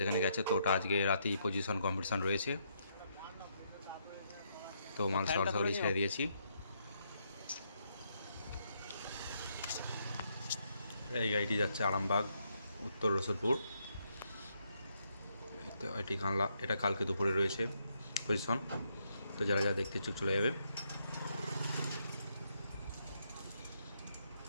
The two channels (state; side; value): inverted; both; correlation -0.76